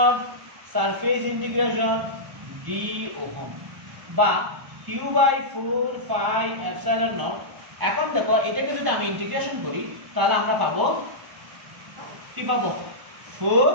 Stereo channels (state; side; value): late; left; 1.0 ms